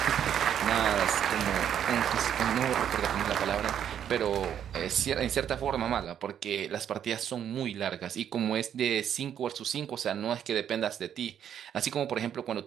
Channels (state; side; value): quieter; left; 9.4 dB